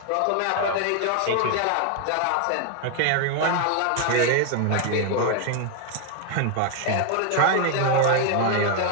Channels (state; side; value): different; both; correlation 0.01